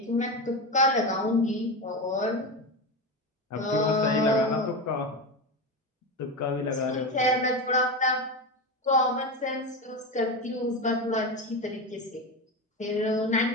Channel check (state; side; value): normal; both; correlation 0.19